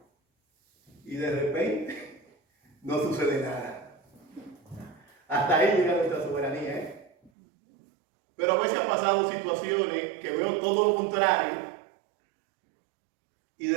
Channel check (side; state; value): left; drops out; at 7.3 s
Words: Y de repente no sucede nada. Hasta ahí llega nuestra soberanía, ¿eh? Pero a veces han pasado situaciones que veo todo lo contrario y